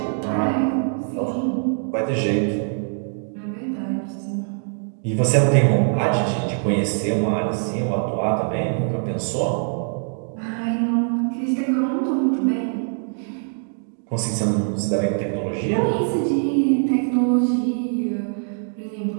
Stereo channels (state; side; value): silent; left; 60 dB below the other